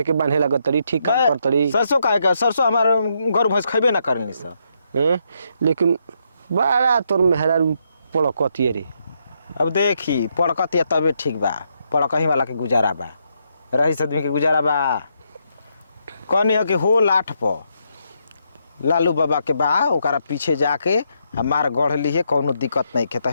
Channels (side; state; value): both; inverted; correlation -0.77